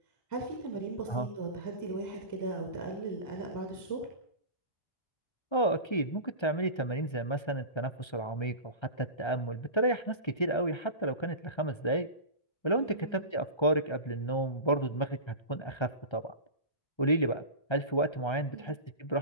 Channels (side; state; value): right; late; 1.3 ms